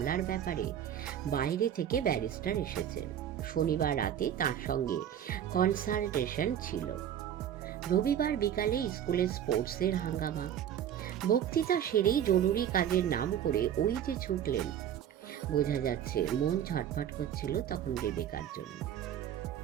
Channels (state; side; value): quieter; left; 9.9 dB